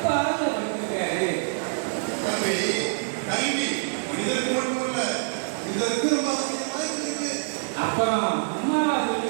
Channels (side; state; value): left; silent; digital silence